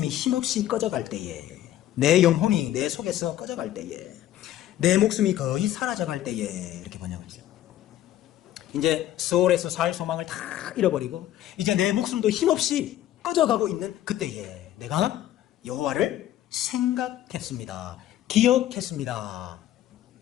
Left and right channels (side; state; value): right; quieter; 12.8 dB